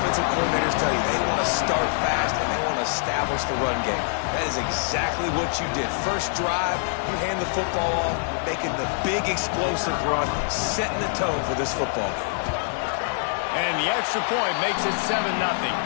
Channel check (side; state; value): right; silent; 60 dB below the other